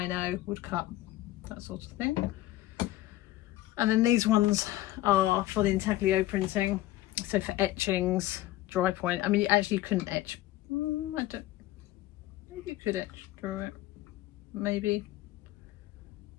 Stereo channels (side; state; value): right; quieter; 15.8 dB